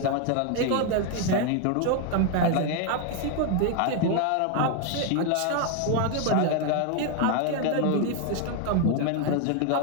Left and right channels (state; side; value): different; both; correlation 0.01